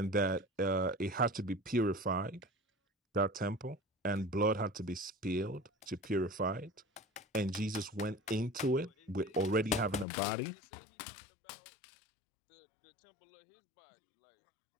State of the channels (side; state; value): right; drops out; at 10.1 s